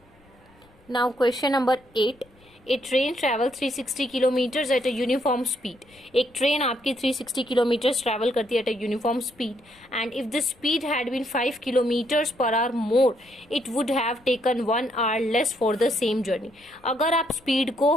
Now question number 8, a train travel 360 kilometres at a uniform speed. एक ट्रेन आपकी 360 किलोमीटर्स ट्रैवल करती है at a uniform speed, and if the speed had been 5 kilometres per hour more, it would have taken 1 hour less for the same journey. अगर आप speed को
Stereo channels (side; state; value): left; noise; rumble, 30 dB below the sound